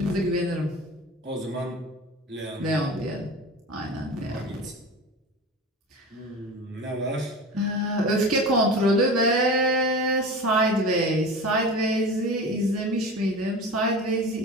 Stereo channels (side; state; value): both; normal; correlation 0.32